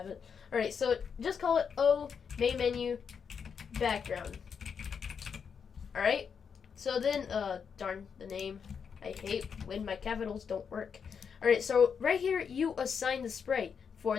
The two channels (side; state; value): right; quieter; 6.6 dB